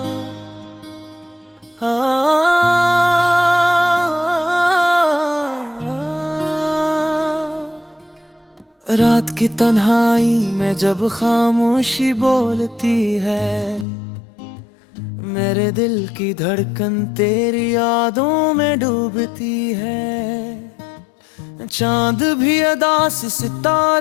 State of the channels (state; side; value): drops out; right; at 13.9 s